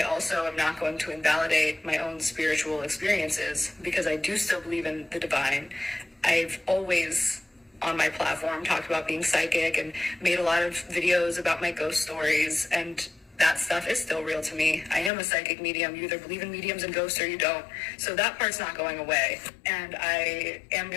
also am not going to invalidate my own spiritual experiences, because I do still believe in the divine. I've always, on my platform, talked about being psychic and made a lot of videos about my ghost stories, and that stuff is still real to me. I am a psychic medium. You either believe in mediums and ghosts or you don't. So that part's not going away. And I am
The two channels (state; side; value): drops out; right; at 15.1 s